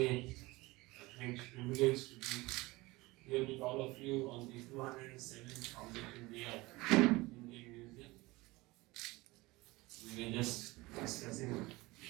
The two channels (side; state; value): left; quieter; 21.5 dB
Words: a great privilege to be here with all of you on the 207th Foundation Day of Indian Museum. We were just discussing a